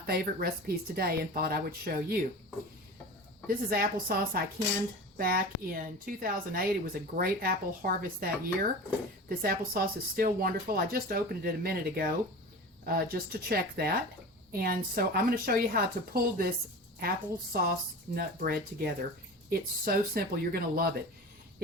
recipes today and thought I would show you. This is applesauce I canned back in 2008. It was a great apple harvest that year. This applesauce is still wonderful. I just opened it a minute ago just to check that. And so I'm going to show you how to pull this applesauce nut bread together. It's so simple. You're going to love it.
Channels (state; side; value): normal; both; correlation 0.33